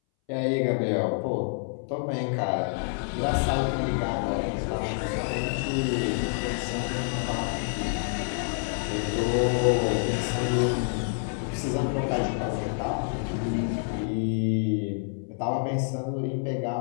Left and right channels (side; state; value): right; silent; 60 dB below the other